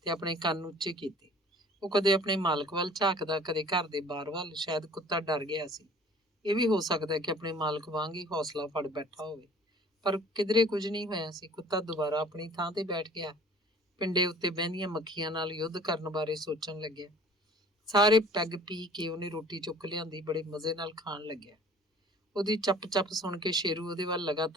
ਤੇ ਆਪਣੇ ਕੰਨ ਉੱਚੇ ਕੀਤੇ। ਉਹ ਕਦੇ ਆਪਣੇ ਮਾਲਕ ਵੱਲ ਝਾਕਦਾ, ਕਦੇ ਘਰ ਦੇ ਬਾਹਰ ਵੱਲ। ਸ਼ਾਇਦ ਕੁੱਤਾ ਡਰ ਗਿਆ ਸੀ। ਇਹ ਵੀ ਹੋ ਸਕਦਾ ਕਿ ਆਪਣੇ ਮਾਲਕ ਵਾਂਗ ਹੀ ਹੌਸਲਾ ਫੜ ਬੈਠਾ ਹੋਵੇ, ਪਰ ਕਿਧਰੇ ਕੁਝ ਨਹੀਂ ਹੋਇਆ ਸੀ। ਕੁੱਤਾ ਦੁਬਾਰਾ ਆਪਣੀ ਥਾਂ ਤੇ ਬੈਠ ਗਿਆ। ਪਿੰਡੇ ਉੱਤੇ ਬਹਿੰਦੀਆਂ ਮੱਖੀਆਂ ਨਾਲ ਯੁੱਧ ਕਰਨ ਬਾਰੇ ਸੋਚਣ ਲੱਗਿਆ। ਸਾਰੇ ਪੈਗ ਪੀ ਕੇ ਉਹਨੇ ਰੋਟੀ ਚੁੱਕ ਲਿਆਂਦੀ, ਬੜੇ ਮਜ਼ੇ ਨਾਲ ਖਾਣ ਲੱਗਿਆ। ਉਹਦੀ ਚੱਪ-ਚੱਪ ਸੁਣ ਕੇ ਸ਼ੇਰੂ ਉਹਦੇ ਵੱਲ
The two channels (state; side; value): normal; both; correlation 0.50